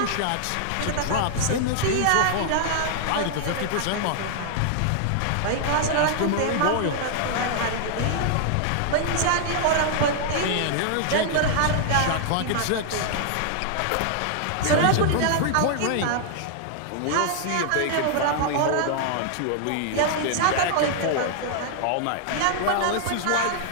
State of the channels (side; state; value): both; different; correlation 0.00